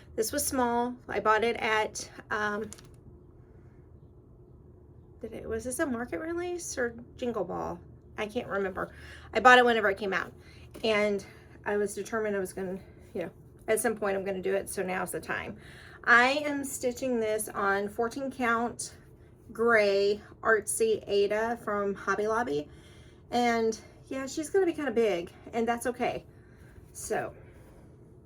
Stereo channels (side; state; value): both; identical; correlation 1.00